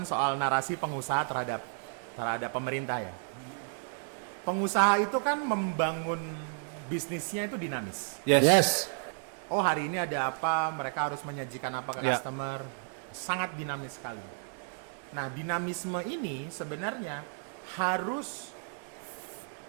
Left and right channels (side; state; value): left; silent; 56 dB below the other